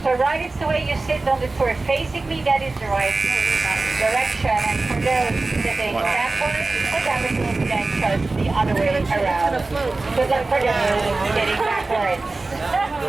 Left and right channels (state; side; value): quieter; left; 3.4 dB